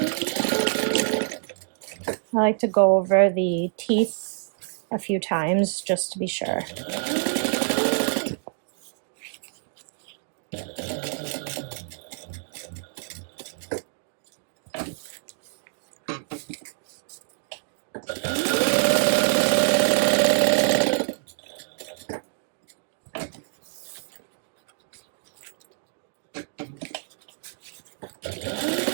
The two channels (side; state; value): left; silent; digital silence